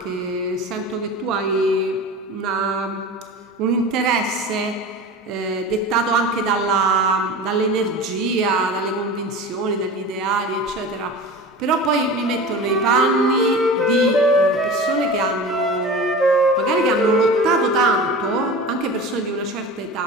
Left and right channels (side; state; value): both; normal; correlation 0.33